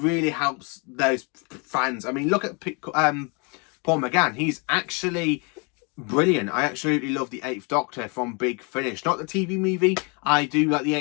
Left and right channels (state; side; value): quieter; right; 32.8 dB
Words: helps those fans. I mean, look at Paul McGann. He's actually brilliant. I absolutely love the Eighth Doctor from Big Finish. Not the TV movie. I do like the